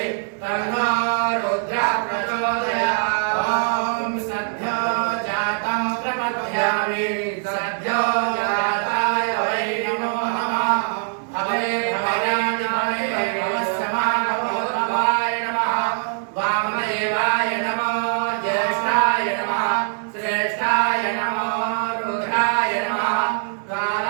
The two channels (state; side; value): silent; left; digital silence